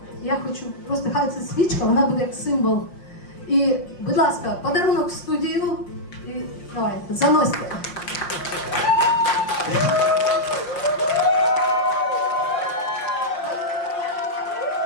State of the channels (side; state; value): right; late; 5.6 ms